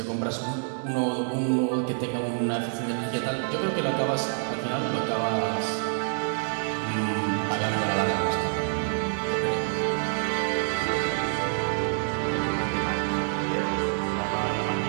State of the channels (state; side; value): silent; left; 60 dB below the other